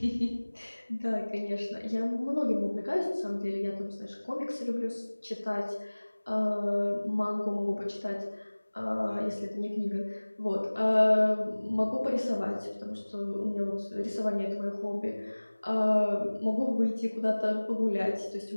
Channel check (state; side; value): inverted; both; correlation -1.00